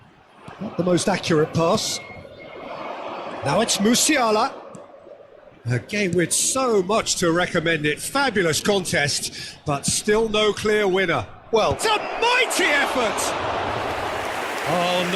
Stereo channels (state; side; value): identical; both; correlation 1.00